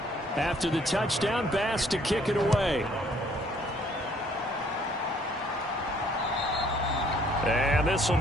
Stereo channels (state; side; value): normal; both; correlation 0.62